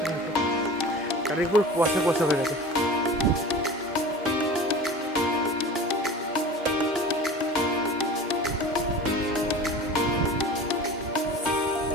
না তো, চারিদিকে পুরো কুয়াশা কুয়াশা হয়ে গেছে।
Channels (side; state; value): both; normal; correlation 0.36